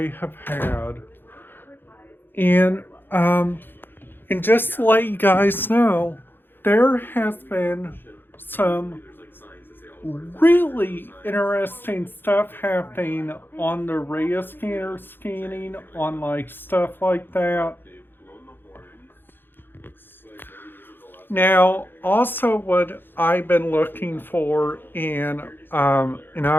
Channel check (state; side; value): late; right; 0.099 ms